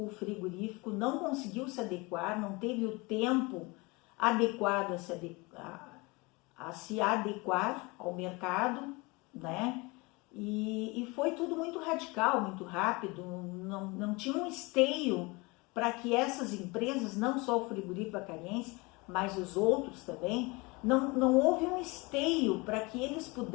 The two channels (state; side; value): quieter; right; 25.8 dB